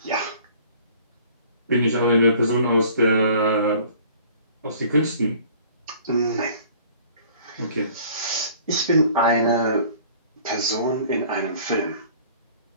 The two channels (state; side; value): inverted; both; correlation -0.51